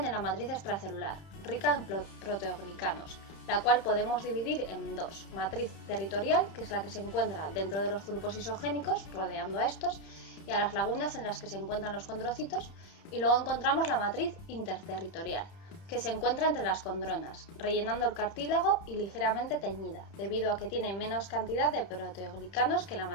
en la matriz extracelular, rica en proteoglicanos, la cual podemos dividir en dos: matriz territorial, que es la que se encuentra dentro de los grupos isogénicos, rodeando a estos, y a las lagunas en las que se encuentran los condrocitos, y luego encontramos la matriz interterritorial, que se encuentra entre las condronas, rellenando el cartílago y ligeramente teñida, debido a que tiene menos cantidad de proteoglicanos que la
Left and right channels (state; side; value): late; right; 30 ms